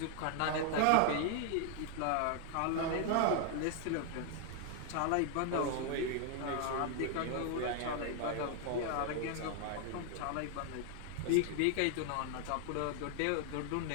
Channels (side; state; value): both; different; correlation 0.00